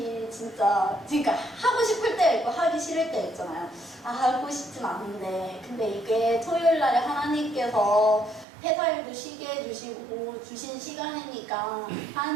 진짜 그러니까 하고 싶을 때 있고 하기 싫을 때 있잖아요. 하고 싶진 않은데 근데 이게 토요일날에 하나님께서 회사일도 쉬게 해주시고 주신 시간이니까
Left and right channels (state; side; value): drops out; left; at 8.5 s